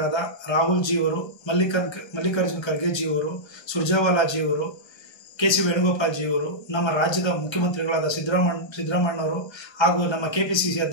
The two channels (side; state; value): right; late; 1.3 ms